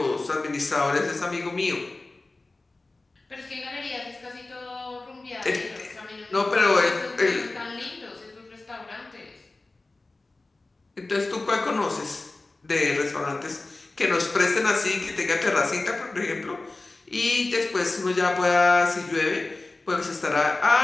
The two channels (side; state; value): right; quieter; 3.2 dB